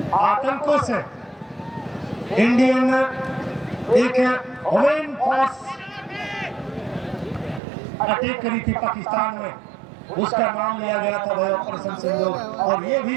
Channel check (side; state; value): left; drops out; at 7.6 s